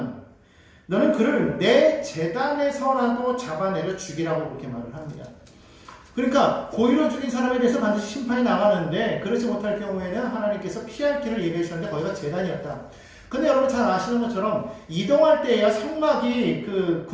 너는 그를 내 제단에서라도 잡아내려 죽이라고 그렇게 말을 합니다. 그러니까 고의로 죽인 사람에 대해서 반드시 심판이 나가는데 그렇지 못할 경우에는 하나님께서 피할 길을 예비해 주셨는데 거기가 제단이었다. 근데 여러분 잘 아시는 것처럼 이동할 때야 성막이 그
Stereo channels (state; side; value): identical; both; correlation 1.00